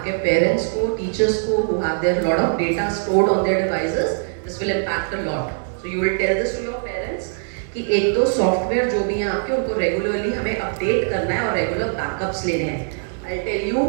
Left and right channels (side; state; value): left; silent; digital silence